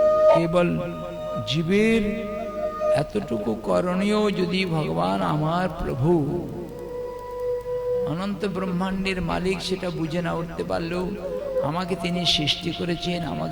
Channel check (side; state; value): both; identical; correlation 1.00